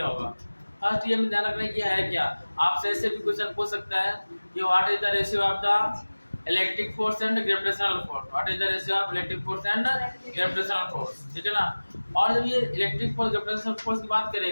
होगा। फर्स्ट ये हमें ध्यान रखना कि है क्या। आपसे ऐसे भी क्वेश्चन पूछ सकता है कि what is the ratio of the electric force and gravitational force. What is the ratio of electric force and gravitational force, ठीक है ना। और जब ये इलेक्ट्रिक फोर्स ग्रेविटेशनल फोर्स की बात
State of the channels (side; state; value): both; inverted; correlation -1.00